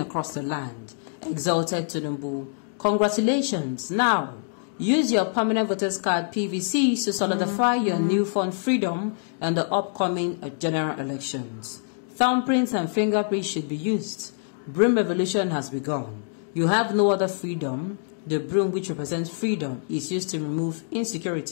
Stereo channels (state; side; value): silent; right; digital silence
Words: the land, exulted Tinubu. Congratulations. Now, use your permanent voters card PVC to solidify your newfound freedom in the upcoming general elections. Thumbprints and fingerprints should be used. Broom revolution has begun. You have no other freedom. The broom, which represents freedom, is used to remove